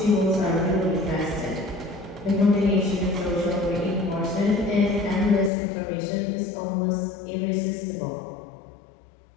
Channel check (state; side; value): drops out; right; at 5.5 s